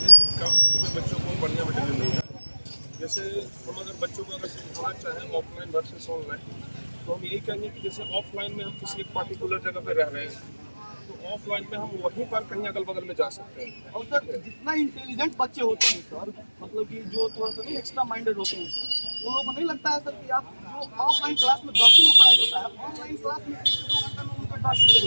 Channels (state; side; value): inverted; both; correlation -1.00